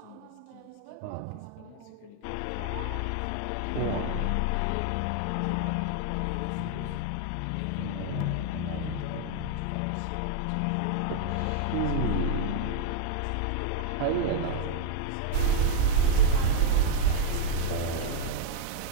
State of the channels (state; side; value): different; both; correlation -0.01